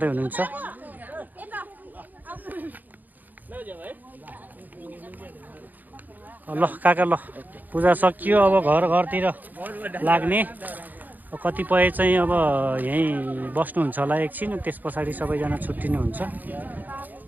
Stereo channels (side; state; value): left; late; 0.084 ms